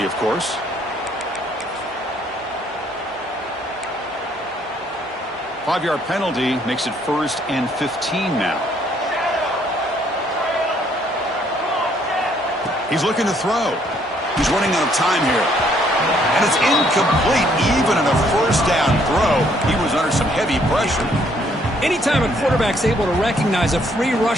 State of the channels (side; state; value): both; normal; correlation 0.66